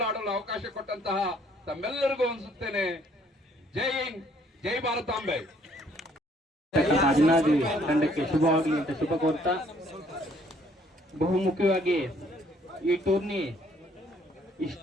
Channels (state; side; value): normal; both; correlation 0.63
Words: ಅವಕಾಶ ಕೊಟ್ಟಂತಹ ತಮ್ಮೆಲ್ಲರಿಗೂ ಅನಿಸುತ್ತೇನೆ. ಜೈ ಹಿಂದ್, ಜೈ ಭಾರತಾಂಬೆ. ಅಭಿನಾದಿ ತಂಡಕ್ಕೆ ಶುಭವಾಗಲಿ ಅಂತ ಶುಭ ಕೋರ್ತಾ, ಬಹುಮುಖ್ಯವಾಗಿ ಈ ಟೂರ್ನಿ